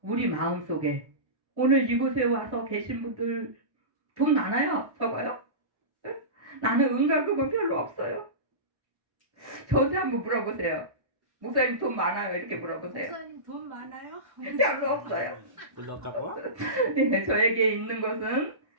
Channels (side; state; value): left; late; 1.1 ms